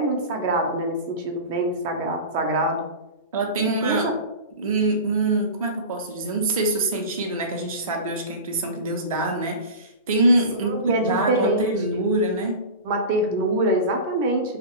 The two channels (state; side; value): inverted; both; correlation -0.30